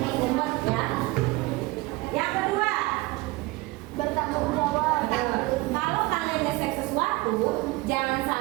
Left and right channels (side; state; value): left; quieter; 21.5 dB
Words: ya. Yang kedua, Bertanggung jawab. kalau kalian nge-share sesuatu, jangan